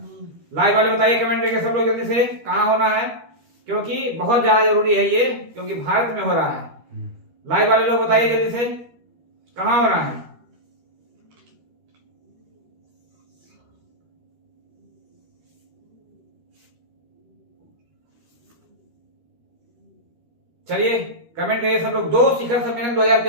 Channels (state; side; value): late; left; 13 ms